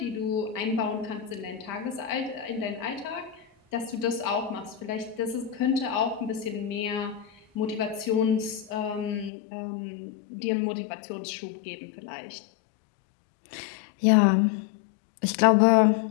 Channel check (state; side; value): drops out; right; at 9.3 s